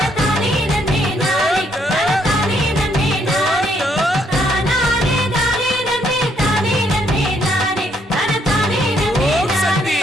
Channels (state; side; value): normal; both; correlation 0.71